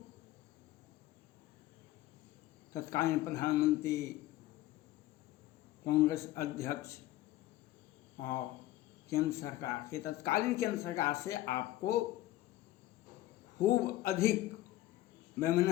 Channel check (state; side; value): quieter; right; 15.5 dB